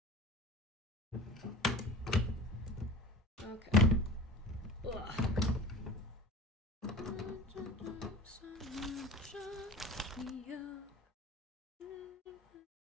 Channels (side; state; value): both; normal; correlation 0.36